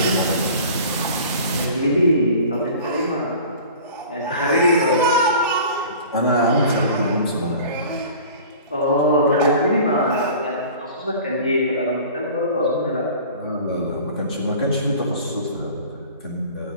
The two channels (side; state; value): both; inverted; correlation -0.43